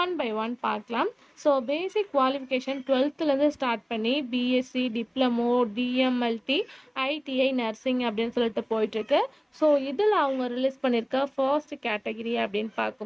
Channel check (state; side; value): identical; both; correlation 1.00